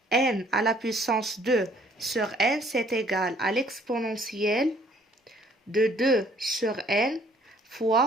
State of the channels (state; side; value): normal; both; correlation 0.60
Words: n à la puissance 2 sur n, c'est égal à l'exponentielle de 2 sur n